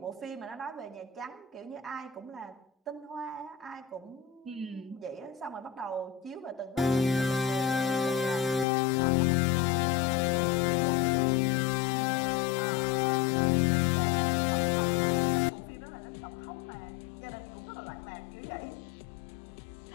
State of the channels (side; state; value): right; drops out; at 8.7 s